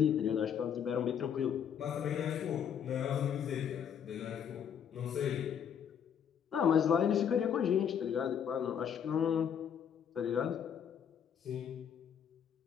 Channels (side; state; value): right; quieter; 8.3 dB